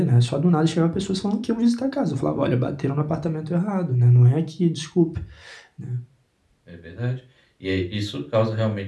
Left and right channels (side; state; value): both; identical; correlation 1.00